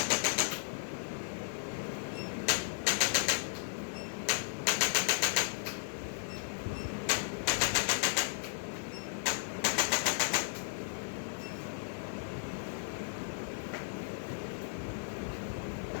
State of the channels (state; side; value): silent; right; digital silence